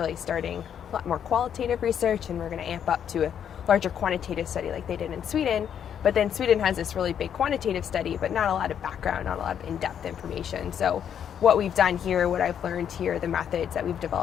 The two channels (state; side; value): quieter; right; 8.8 dB